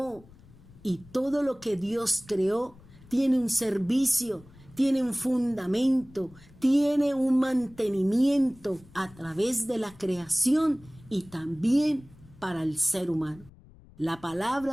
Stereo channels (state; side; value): noise; left; rumble, 24 dB below the sound